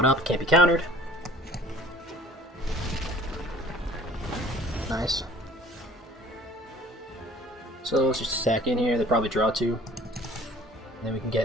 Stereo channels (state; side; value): normal; both; correlation 0.51